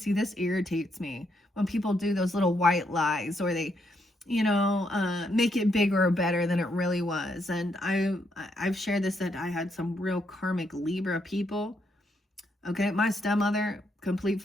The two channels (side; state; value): both; normal; correlation 0.77